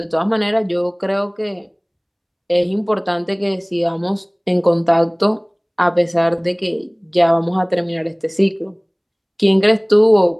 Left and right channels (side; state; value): both; identical; correlation 1.00